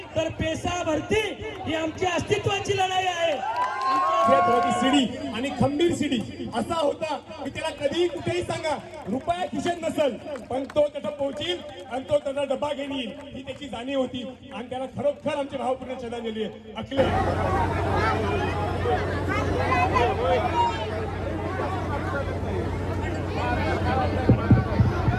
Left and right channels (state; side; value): identical; both; correlation 1.00